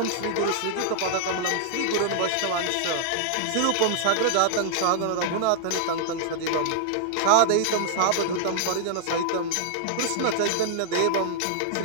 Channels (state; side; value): different; both; correlation -0.01